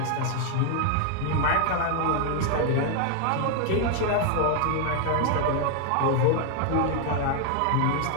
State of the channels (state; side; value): different; both; correlation 0.01